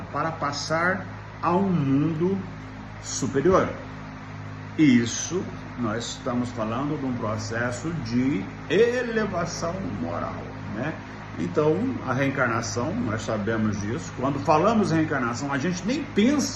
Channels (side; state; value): both; identical; correlation 1.00